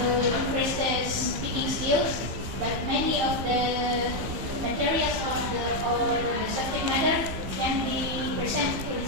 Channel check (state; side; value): late; left; 15 ms